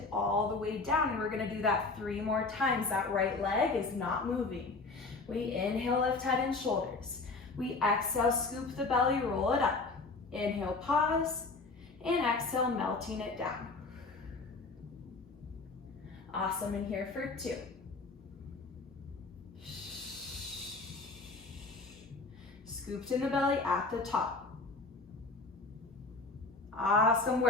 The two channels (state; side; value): quieter; right; 3.7 dB